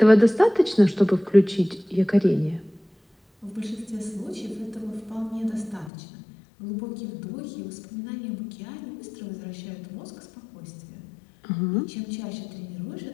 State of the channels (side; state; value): right; drops out; at 5.9 s